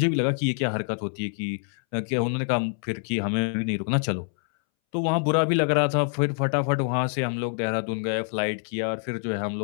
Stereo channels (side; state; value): right; silent; 61 dB below the other